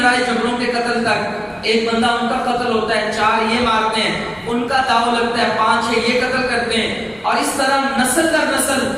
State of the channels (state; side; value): identical; both; correlation 1.00